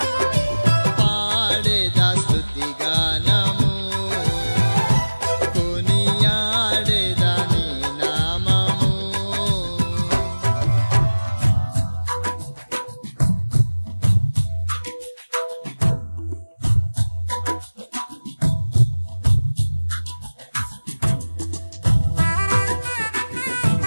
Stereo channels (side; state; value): both; inverted; correlation -1.00